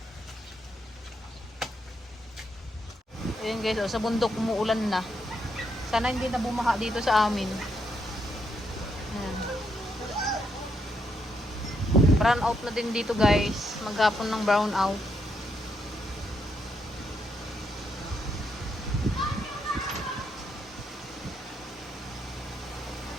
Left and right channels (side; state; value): both; normal; correlation 0.78